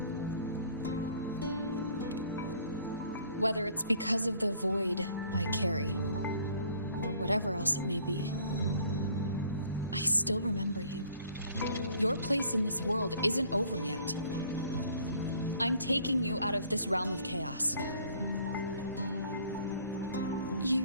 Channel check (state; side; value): inverted; both; correlation -0.57